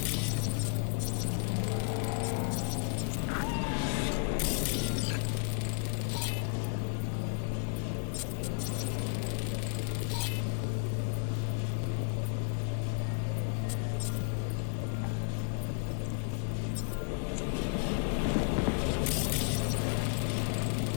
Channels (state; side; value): silent; right; 56 dB below the other